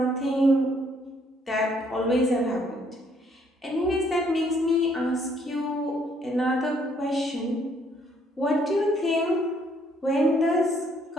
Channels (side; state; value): both; normal; correlation 0.67